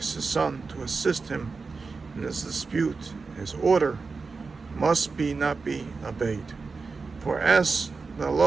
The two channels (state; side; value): quieter; left; 4.4 dB